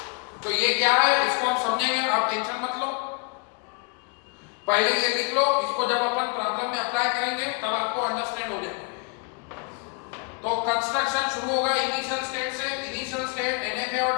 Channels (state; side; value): quieter; right; 33.0 dB